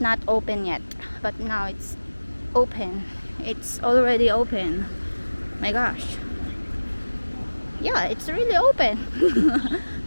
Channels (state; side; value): inverted; both; correlation -1.00